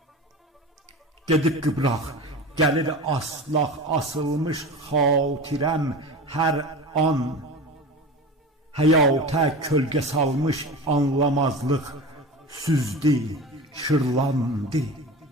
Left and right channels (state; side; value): normal; both; correlation 0.31